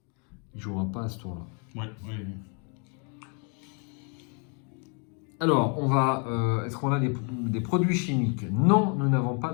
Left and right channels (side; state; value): right; quieter; 37.3 dB